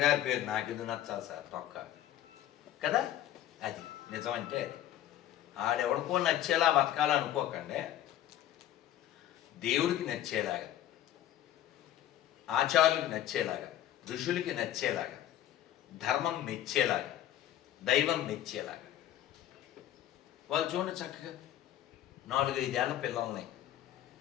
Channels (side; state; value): right; quieter; 12.3 dB